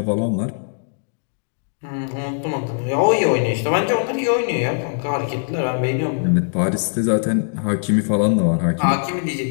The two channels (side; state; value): right; silent; 65 dB below the other